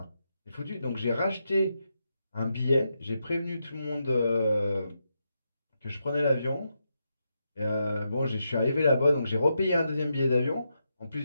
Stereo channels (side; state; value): both; inverted; correlation -0.84